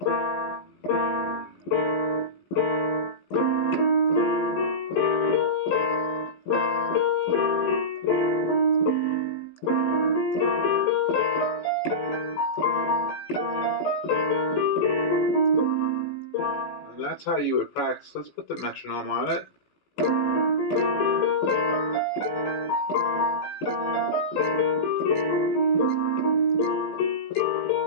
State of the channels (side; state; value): right; late; 17 ms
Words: And that's how you would practice. Let's put the metronome on it.